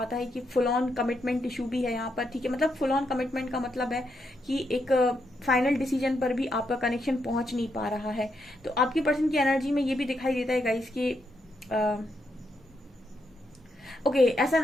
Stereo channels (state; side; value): normal; both; correlation 0.80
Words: है कि फुल ऑन कमिटमेंट इशू भी है यहाँ पर। ठीक है, मतलब फुल ऑन कमिटमेंट का मतलब है कि एक फाइनल डिसीजन पर भी आपका कनेक्शन पहुंच नहीं पा रहा है। तो आपके पर्सन की एनर्जी में ये भी दिखाई देता है गाइस कि ओके, ऐसा